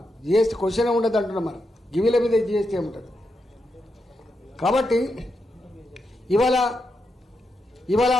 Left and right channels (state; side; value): normal; both; correlation 0.85